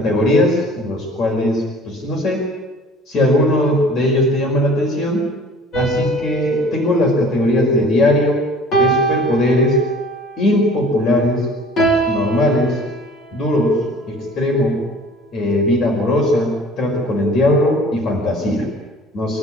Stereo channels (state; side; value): normal; both; correlation 0.48